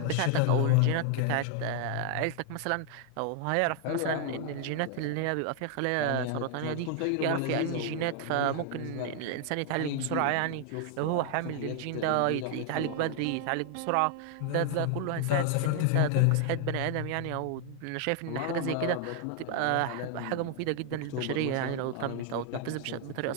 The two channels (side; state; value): both; different; correlation 0.00